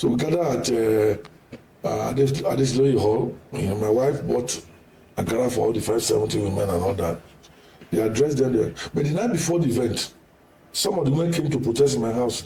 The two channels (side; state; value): both; identical; correlation 1.00